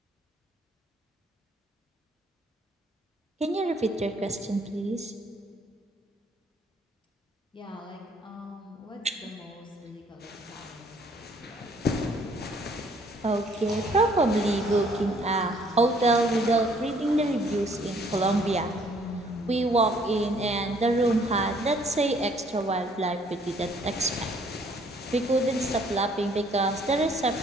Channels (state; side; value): normal; both; correlation 0.62